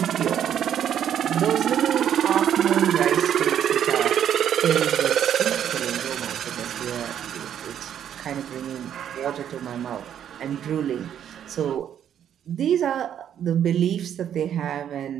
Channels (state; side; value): quieter; left; 9.6 dB